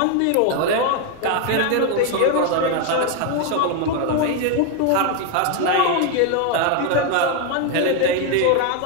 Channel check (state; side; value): different; both; correlation 0.01